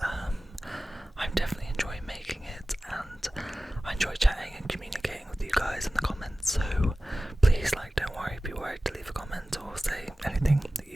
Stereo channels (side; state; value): both; normal; correlation 0.96